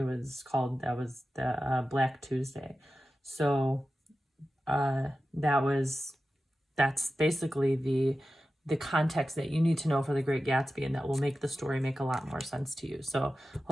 called, that was the Black Tuesday. So that's basically the context that you need to know for The Great Gatsby, and that will make the story make a lot more sense to you. So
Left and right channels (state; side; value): normal; both; correlation 0.93